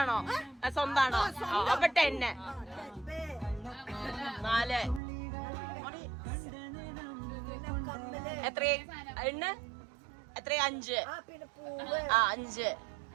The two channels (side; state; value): left; drops out; at 5.0 s